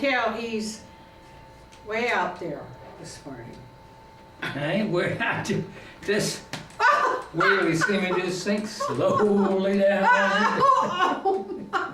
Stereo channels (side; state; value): both; identical; correlation 1.00